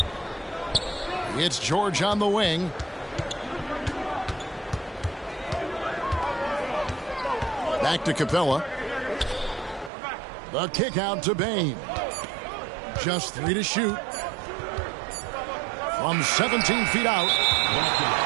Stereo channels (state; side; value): drops out; left; at 9.9 s